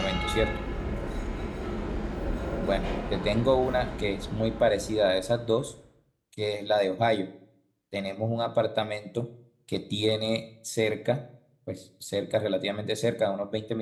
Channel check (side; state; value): both; identical; correlation 1.00